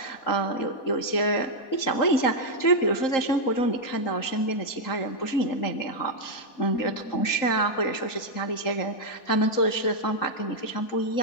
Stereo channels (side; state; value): right; late; 3.8 ms